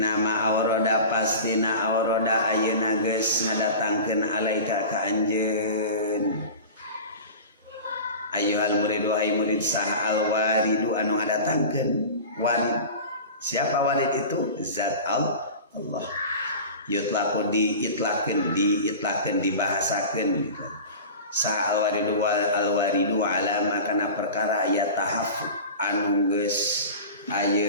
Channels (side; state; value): both; inverted; correlation -0.34